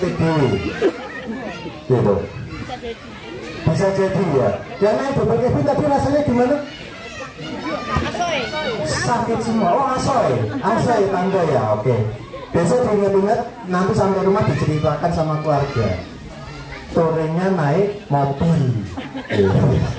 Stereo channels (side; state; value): both; identical; correlation 1.00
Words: dhewe. Gitu. Bisa jadi ya. Yang naik double cabin tapi rasanya gimana? Asoy. Sakit semua. Oh asoy tangga ya. Oke. Besok diingat-ingat, nanti sampai rumah diceritakan sama keluarga. Touringnya naik mobil.